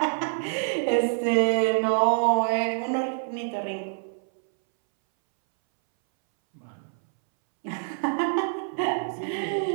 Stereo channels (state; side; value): silent; left; 61 dB below the other